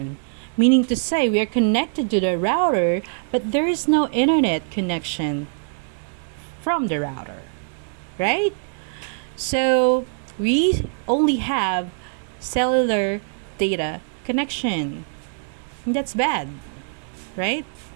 meaning to say we are connected to the router, but there is no internet connection from the router, right? So we only have cellular data connection. That's bad, right?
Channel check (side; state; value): left; silent; digital silence